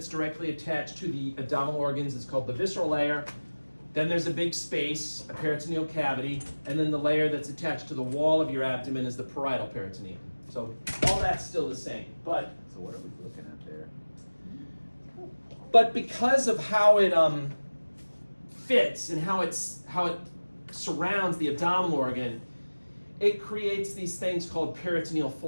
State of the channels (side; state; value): both; inverted; correlation -1.00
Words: directly attached to the abdominal organs is called the visceral layer. Then there's a big space, a peritoneal cavity, and then the layer that's attached to the wall of your abdomen is the parietal peritoneum. So all that's still the same. But So what are we looking at there? But because of how it fits and how it surrounds the abdominal organ, it creates these things called peritoneal